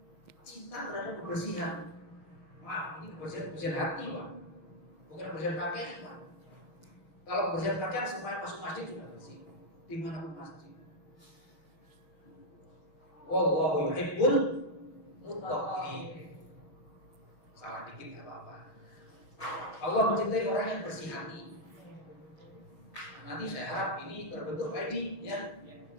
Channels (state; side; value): late; right; 6.3 ms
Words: cinta terhadap kebersihan. Maaf, ini kebersihan hati, Pak. Bukan kebersihan pakaian, Pak. Kalau kebersihan pakaian semuanya masuk masjid juga bersih. Di mana pun masjid. Wallahu yuhibbul muttaqin. Salah dikit enggak apa-apa. Allah mencintai orang yang bersih hati. Nanti saya harap ini terbentuk ID ya,